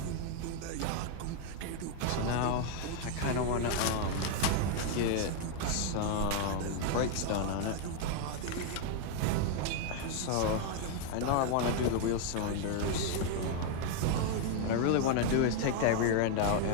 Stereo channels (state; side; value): different; both; correlation 0.00